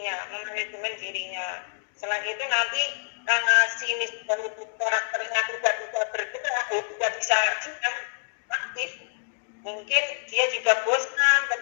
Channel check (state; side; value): silent; right; digital silence